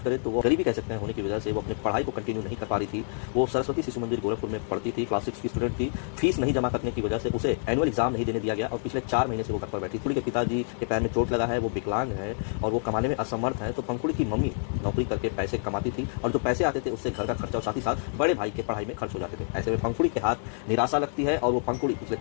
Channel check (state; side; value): silent; right; 60 dB below the other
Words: करें तो वो गरीबी कह सकते हैं होने की वजह से वो अपनी पढ़ाई को कंटिन्यू नहीं कर पा रही थी। वो सरस्वती शिशु मंदिर गोरखपुर में पढ़ती थी, क्लास 6 की स्टूडेंट थी। फीस नहीं जमा करने की वजह से उसे एनुअल एग्जाम नहीं देने दिया गया और पिछले 4 महीने से वो घर पर बैठी। पंकुड़ी के पिताजी के पैर में चोट लगा है, वो विकलांग है और वो कमाने में असमर्थ है। तो पंकुड़ी की मम्मी नौकरी करके पैसे कमाती थी और जो पैसे आते थे उससे घर का खर्चा और साथ ही साथ बड़े भाई के पढ़ाई में खर्च हो जाते थे। ऐसे में पंकुड़ी के हाथ निराशा लगती है और वो पंकुड़ी पिछले